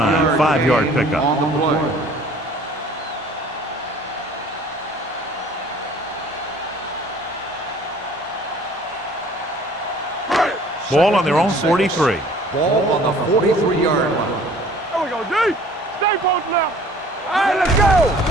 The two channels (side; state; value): both; normal; correlation 0.52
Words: 5-yard pickup. On the play. Ball on their own 43. Ball on the 43-yard line. There we go, D. Stay posted now. All right, let's go.